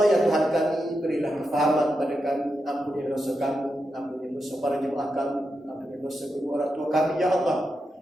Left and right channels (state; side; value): normal; both; correlation 0.87